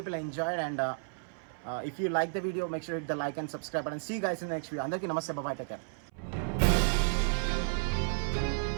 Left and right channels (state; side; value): silent; left; 56 dB below the other